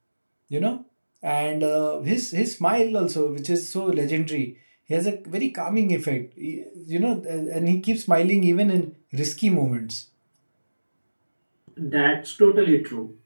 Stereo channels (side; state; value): both; inverted; correlation -1.00